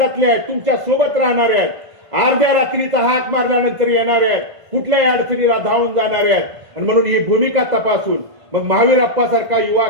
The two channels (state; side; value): late; left; 1.5 ms